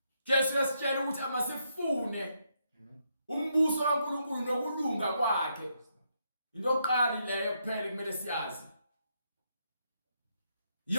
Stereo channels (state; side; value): inverted; both; correlation -0.78